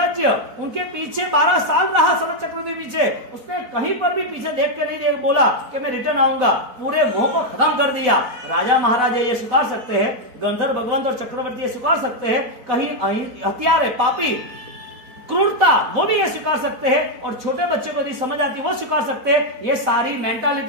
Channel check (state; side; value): late; left; 4.1 ms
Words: उनके पीछे 12 साल रहा शरद चक्रवर्ती पीछे, उसने कहीं पर भी पीछे देख के नहीं बोला कि मैं रिटर्न आऊंगा, पूरे मोह को खत्म कर दिया। राजा महाराजा ये स्वीकार सकते हैं, गंधर्व भगवंत और चक्रवर्ती ये स्वीकार सकते हैं, कहीं हथियार है, पापी क्रूरता वो भी ये स्वीकार सकते हैं, और छोटे बच्चे को यदि समझ आती है वो स्वीकार सकते हैं। ये सारी